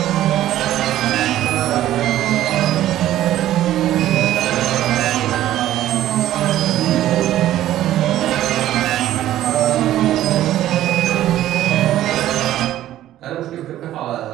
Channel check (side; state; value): left; quieter; 13.3 dB